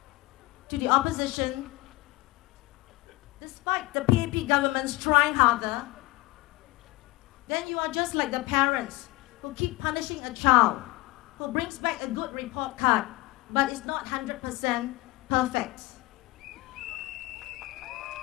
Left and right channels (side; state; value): right; quieter; 20.3 dB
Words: to the opposition, despite the PAP government's trying harder, then you are just like the parents who keep punishing a child who brings back a good report card but is not 100% perfect.